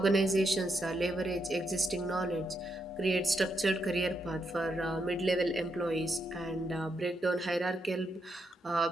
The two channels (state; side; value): normal; both; correlation 0.81